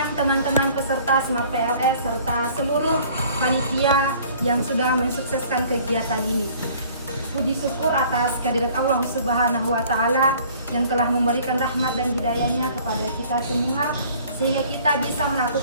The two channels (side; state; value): both; inverted; correlation -0.53